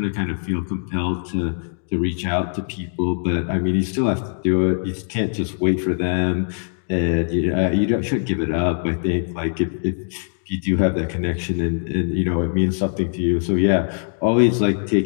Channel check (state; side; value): silent; right; digital silence